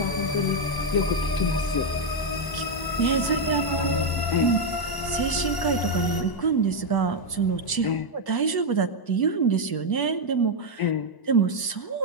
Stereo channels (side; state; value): right; late; 1.0 ms